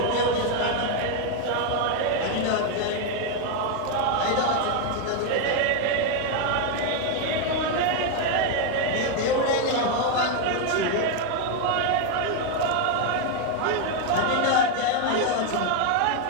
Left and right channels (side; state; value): both; different; correlation 0.01